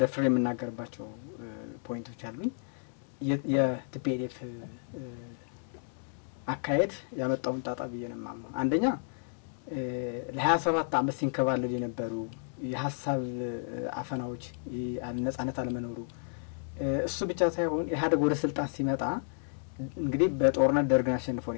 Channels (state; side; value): silent; right; digital silence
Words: ደፍሬ የምናገርባቸው ፖይንቶች አሉኝ። የቲፒኤልኤፍ አካሄድ ያመጣውን ጣጣ ብዬ ነው የማምነው። አንደኛ ለ27 አመት ሲንከባለል የነበሩ የሀሳብ አፈናዎች ነጻነት አለመኖሩ እሱ ብቻ ሳይሆን ኢህአዴግ ወደ ስልጣን ሲመጣ እንግዲህ በጦርነት ደርግን አሸንፎ